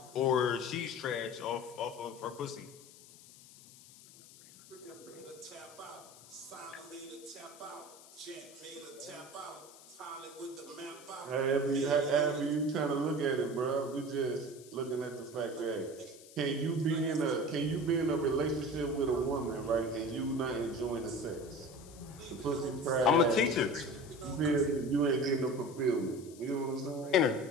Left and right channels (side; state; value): left; noise; hiss, 20 dB below the sound